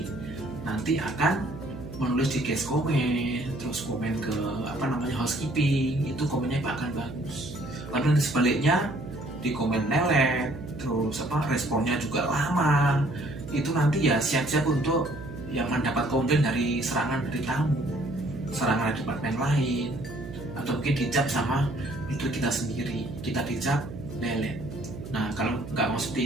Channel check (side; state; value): right; noise; hum, 12 dB below the sound